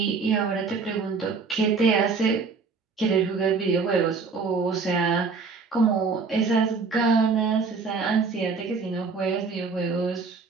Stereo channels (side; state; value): left; quieter; 4.7 dB